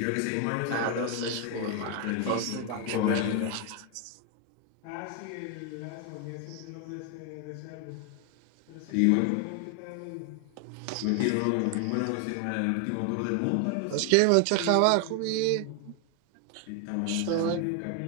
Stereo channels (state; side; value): different; both; correlation 0.01